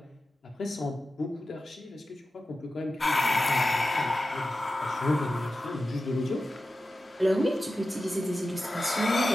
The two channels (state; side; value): normal; both; correlation 0.93